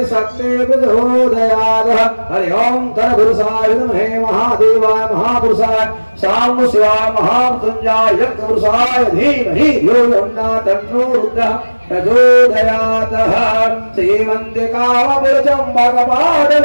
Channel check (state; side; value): inverted; both; correlation -1.00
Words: शक्ति प्रचोदयात् हरि ओम धनपुरुषाय विद्महे महादेवाय महापुरुषाय साम शिवाय महामृत्युंजयाय यज्ञपुरुषाय धीमहि यो यमुना तन्नो रुद्रः प्रचोदयातः श्रीमन्तिकावपुरचं भगवान्